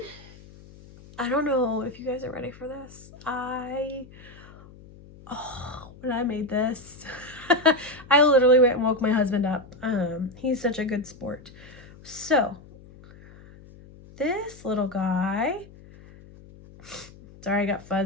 I don't know if you guys are ready for this. When I made this, I literally went and woke my husband up. He's such a good sport. So, this little guy, sorry, I got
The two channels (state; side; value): noise; left; hum, 21 dB below the sound